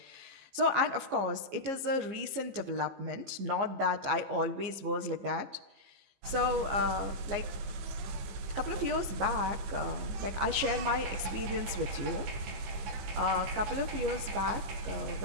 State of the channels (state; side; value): late; left; 15 ms